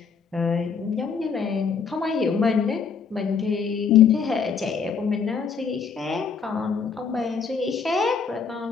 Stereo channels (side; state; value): right; quieter; 6.0 dB